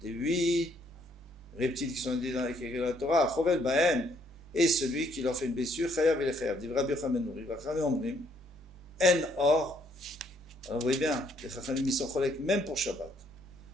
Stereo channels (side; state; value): both; normal; correlation 0.68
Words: des 8 reptiles qui sont dit dans la Torah, chovel bahem, et celui qui leur fait une blessure, chayav et chayav. Dit Rabbi Yochanan ben Nouri, Vachame omrim, en or. Alors vous voyez bien, les Chachamim ils sont cholek même pour Shabbat.